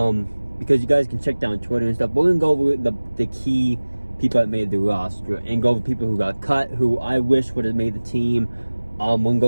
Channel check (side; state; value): both; inverted; correlation -1.00